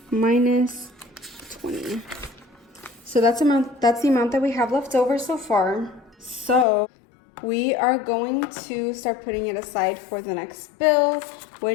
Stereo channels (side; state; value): right; drops out; at 6.7 s